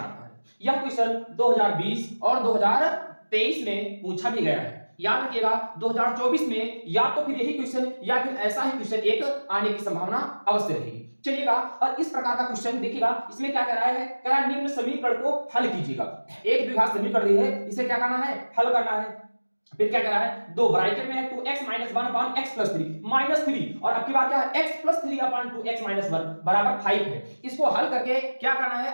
है। यह क्वेश्चन 2020 और 2023 में पूछा भी गया है। याद रखिएगा 2024 में या तो फिर यही क्वेश्चन या फिर ऐसा ही क्वेश्चन एक आने की संभावना अवश्य रहेगी। चलिएगा, और इस प्रकार का क्वेश्चन देखिएगा, इसमें क्या कह रहा है, कह रहा है निम्न समीकरण को हल कीजिएगा। एक द्विघात समीकरण दी है, इसे क्या करना है, हल करना है। फिर क्या कह रहा है, दो ब्रैकेट में है 2x - 1 अपान x + 3 -3, और अब की बात क्या है, x + 3 अपान 2x - 1 बराबर 5 है। इसको हल करके क्या करना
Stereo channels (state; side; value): inverted; both; correlation -1.00